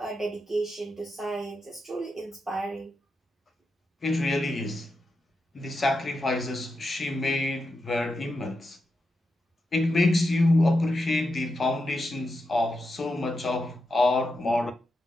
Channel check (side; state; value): both; normal; correlation 0.87